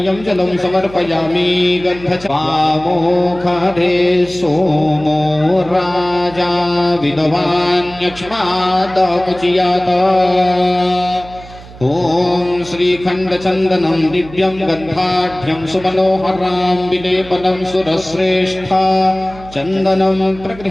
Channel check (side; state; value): right; noise; hum, 18 dB below the sound